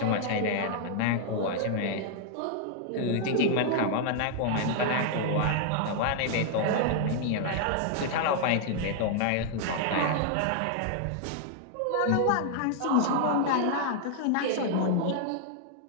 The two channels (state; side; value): different; both; correlation 0.00